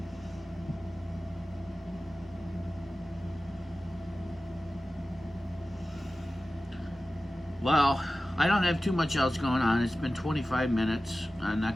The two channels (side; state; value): both; normal; correlation 0.95